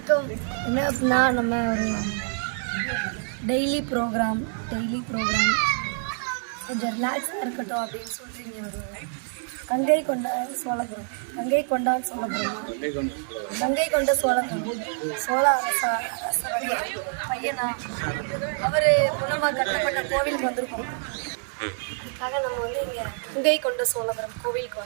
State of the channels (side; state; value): left; silent; 57 dB below the other